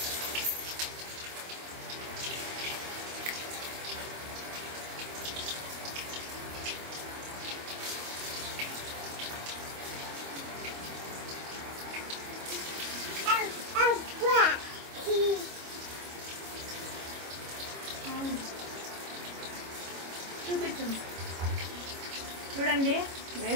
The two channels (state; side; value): late; left; 25 ms